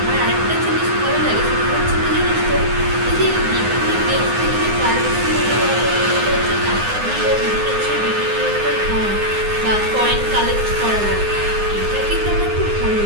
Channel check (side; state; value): left; late; 9.7 ms